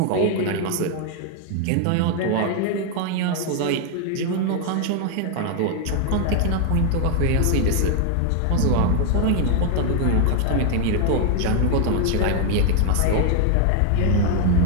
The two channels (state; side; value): different; both; correlation 0.00